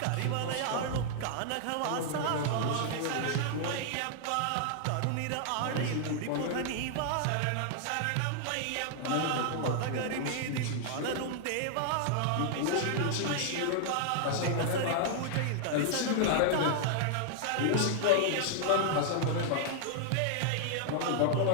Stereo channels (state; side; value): different; both; correlation -0.01